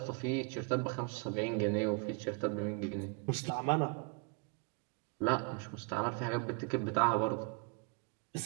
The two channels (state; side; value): quieter; left; 34.7 dB